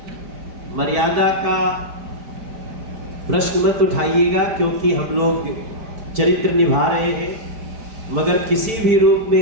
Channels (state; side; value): late; left; 4.5 ms